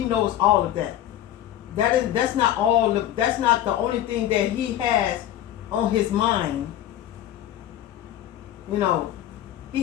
knows all of that. That's not all. That's not the only thing that he has on his mind. You know,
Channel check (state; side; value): quieter; right; 12.1 dB